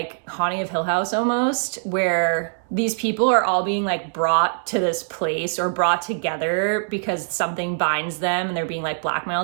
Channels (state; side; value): silent; left; digital silence